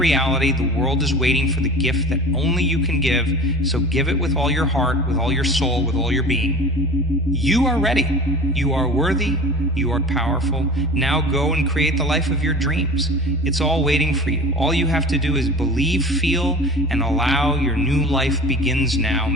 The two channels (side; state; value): right; noise; hum, 23 dB below the sound